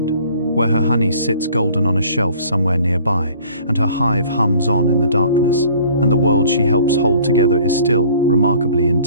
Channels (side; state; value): both; inverted; correlation -0.52